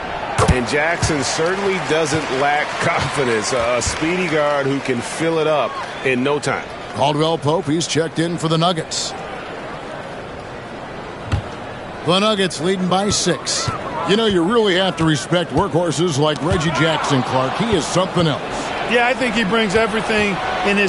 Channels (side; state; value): both; identical; correlation 1.00